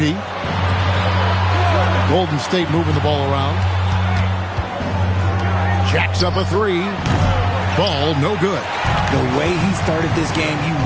Golden State moving the ball around. Jacks up a three. Ball no good. The way he started this game, you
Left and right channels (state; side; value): identical; both; correlation 1.00